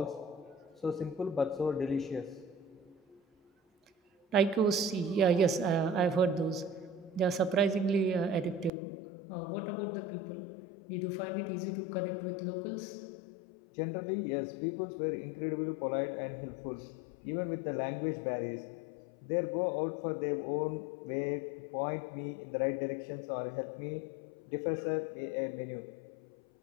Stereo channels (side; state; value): right; drops out; at 8.7 s